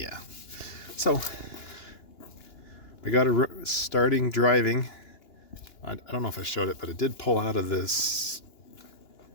So, we got a starting driving. I don't know if I showed it, but it did pull out of this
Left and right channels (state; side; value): late; right; 2.9 ms